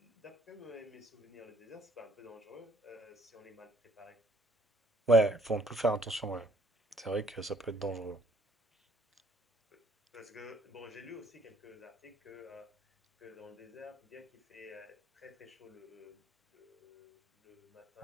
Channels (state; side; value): normal; both; correlation 0.62